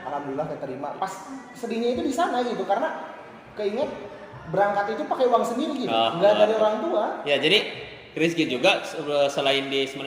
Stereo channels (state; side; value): identical; both; correlation 1.00